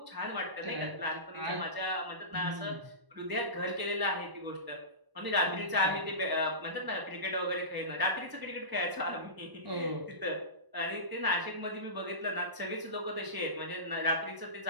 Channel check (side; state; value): left; late; 1.0 ms